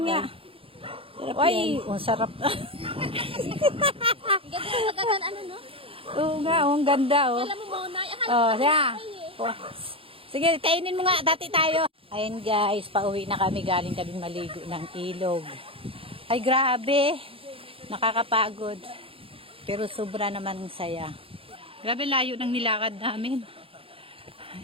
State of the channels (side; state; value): left; late; 0.27 ms